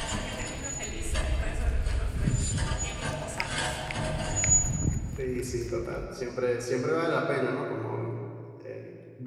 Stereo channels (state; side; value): identical; both; correlation 1.00